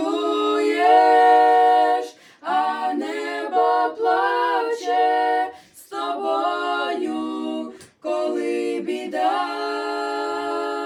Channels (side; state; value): both; identical; correlation 1.00